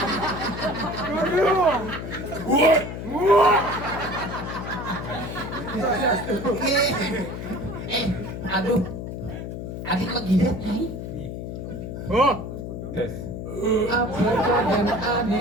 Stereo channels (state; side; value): noise; left; hum, 7 dB below the sound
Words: Aduh. Adik kok gila, nyai? Apakah dan